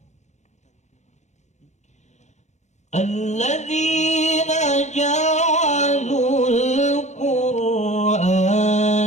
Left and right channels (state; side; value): late; right; 0.33 ms